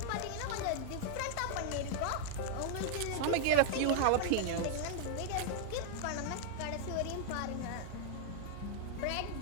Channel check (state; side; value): different; both; correlation 0.00